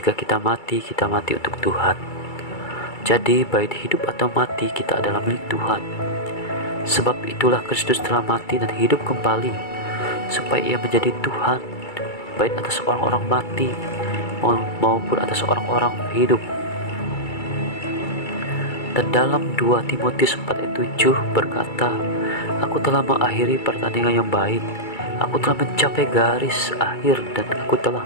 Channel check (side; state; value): right; late; 2.3 ms